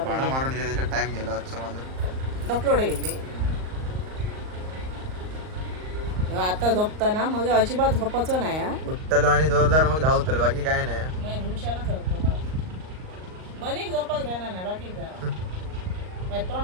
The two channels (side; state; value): left; late; 38 ms